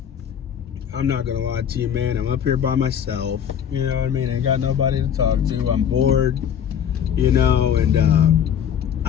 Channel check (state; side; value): quieter; right; 8.7 dB